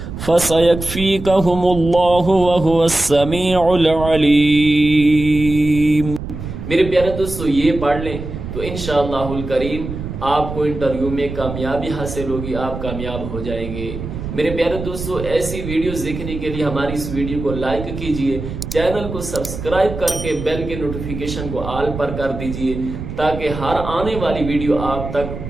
فسیکفیکہم اللہ وہو السمیع العلیم۔ میرے پیارے دوستو، یہ پڑھ لیں تو انشاءاللہ الکریم آپ کو انٹرویو میں کامیابی حاصل ہوگی، آپ کامیاب ہو جائیں گے۔ میرے پیارے دوستو، ایسی ویڈیوز دیکھنے کے لیے ہماری اس ویڈیو کو لائک کیجئے، چینل کو سبسکرائب کر کے بیل کے نوٹیفیکیشن کو آل پر کر دیجئے تاکہ ہر آنے والی ویڈیو آپ تک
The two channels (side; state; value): right; noise; rumble, 8 dB below the sound